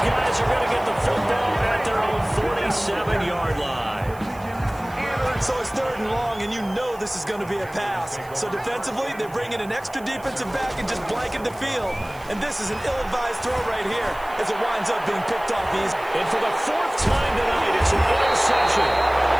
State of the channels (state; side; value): noise; right; hiss, 23 dB below the sound